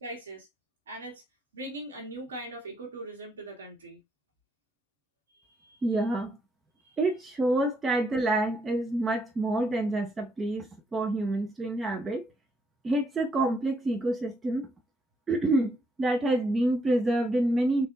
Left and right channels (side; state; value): both; normal; correlation 0.76